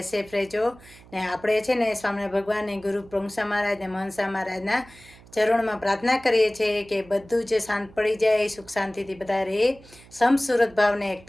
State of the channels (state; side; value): noise; right; hum, 23 dB below the sound